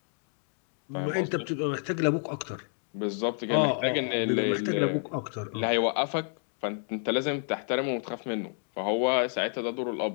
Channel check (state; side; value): silent; right; 56 dB below the other